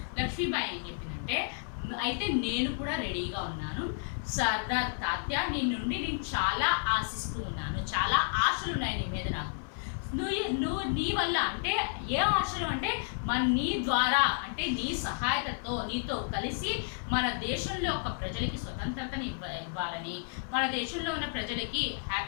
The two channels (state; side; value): silent; right; 57 dB below the other